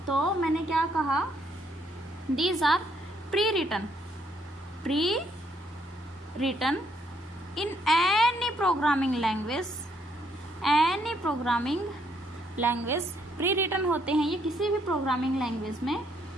तो मैंने क्या कहा? These are pre written in any programming language pre written होते हैं ये किसी भी प्रोग्रामिंग लैंग्वेज में,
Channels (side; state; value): both; normal; correlation 0.71